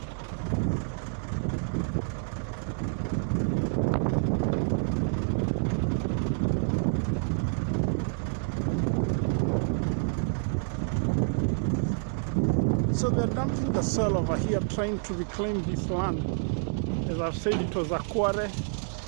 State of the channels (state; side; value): silent; left; digital silence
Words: So they're dumping the soil over here, trying to reclaim this land. As I've said, it was a quarry.